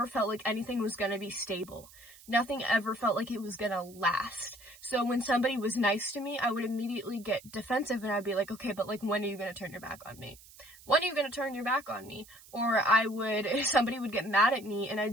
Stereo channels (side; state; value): right; noise; hiss, 21 dB below the sound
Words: felt like anything was gonna be stable. Nothing ever felt like it was gonna last. So when somebody was nice to me, I would immediately get defensive, and I'd be like, "Okay, but, like, when are you gonna turn your back on me? When are you gonna turn your back on me?" Or somebody would get mad at me, and